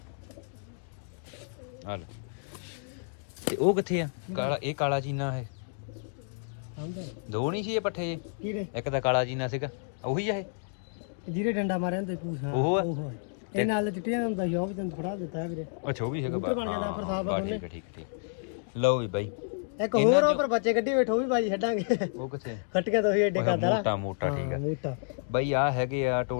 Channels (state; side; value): silent; right; digital silence